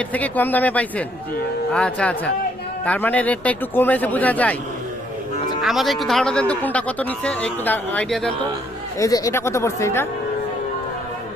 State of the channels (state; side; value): noise; left; rumble, 25 dB below the sound